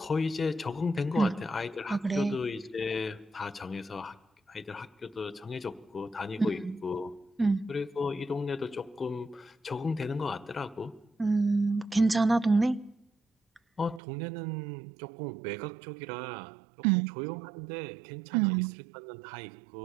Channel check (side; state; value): left; drops out; at 14.0 s